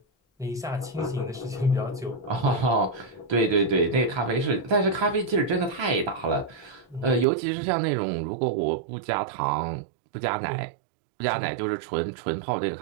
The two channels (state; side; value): drops out; left; at 7.2 s